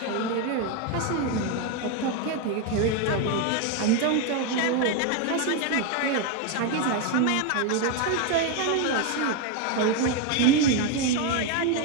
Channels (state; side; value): different; both; correlation 0.02